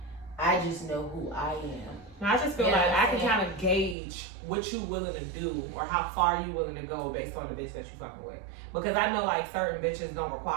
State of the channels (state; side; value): drops out; left; at 4.0 s